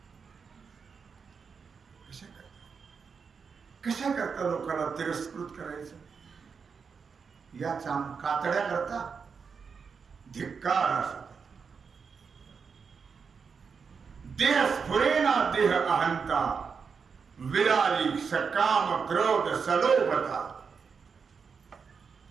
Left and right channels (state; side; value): quieter; left; 5.8 dB